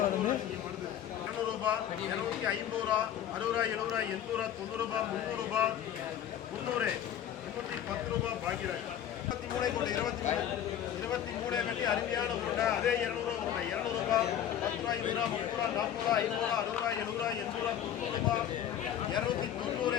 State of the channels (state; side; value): quieter; right; 10.2 dB